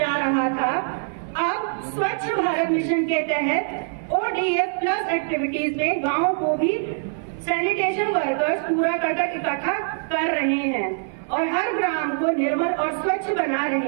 रहा था, अब स्वच्छ भारत मिशन के तहत ODF प्लस एक्टिविटीज में गाँव को भी सैनिटेशन वर्कर्स कूड़ा करकट इकट्ठा कर रहे हैं और हर ग्राम को निर्मल और स्वच्छ बना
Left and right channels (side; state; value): left; silent; 57 dB below the other